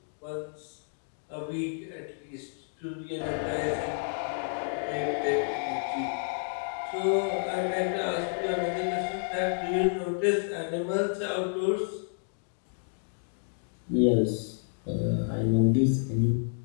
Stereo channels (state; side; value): silent; right; digital silence